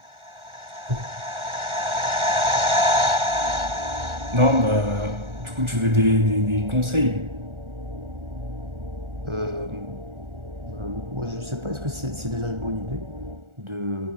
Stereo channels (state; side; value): late; left; 1.4 ms